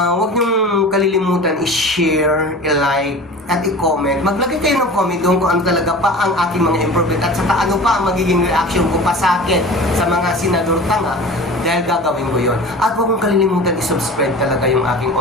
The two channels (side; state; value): both; normal; correlation 0.37